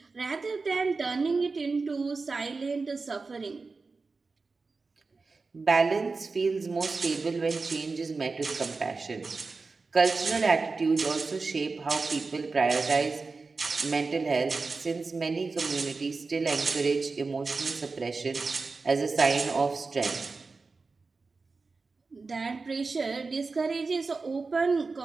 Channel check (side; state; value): left; quieter; 4.1 dB